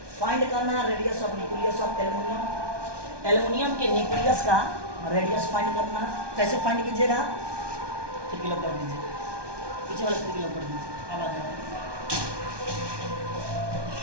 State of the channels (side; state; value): left; late; 1.2 ms